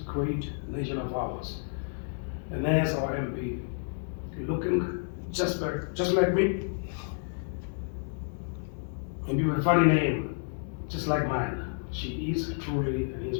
great nation of ours. And there's our MP, looking just like me, maybe with a funny name, just like mine. She is truly an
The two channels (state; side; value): silent; right; 58 dB below the other